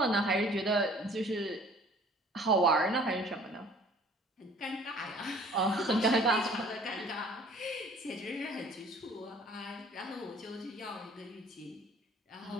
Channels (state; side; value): normal; both; correlation 0.52